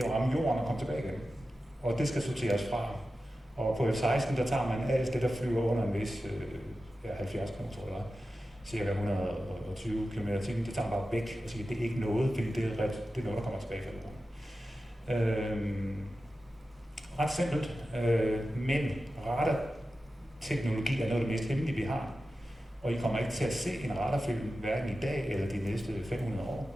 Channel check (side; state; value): both; normal; correlation 0.93